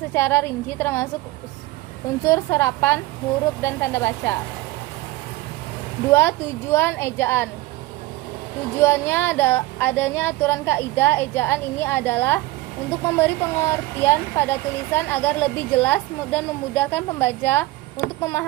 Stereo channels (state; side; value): quieter; left; 18.7 dB